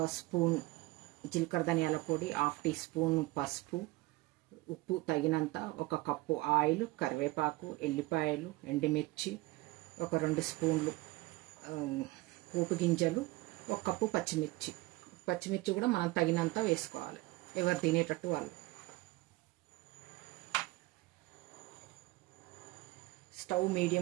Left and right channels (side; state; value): left; quieter; 20.7 dB